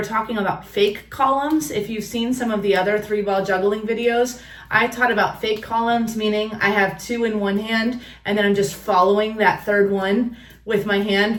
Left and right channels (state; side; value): identical; both; correlation 1.00